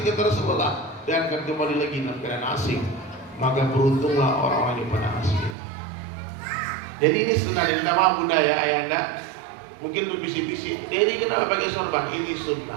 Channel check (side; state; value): left; drops out; at 5.6 s